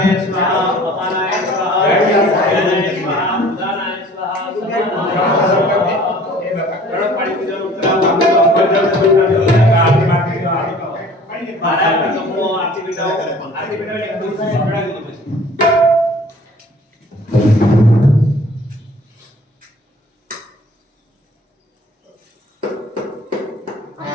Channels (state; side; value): normal; both; correlation 0.51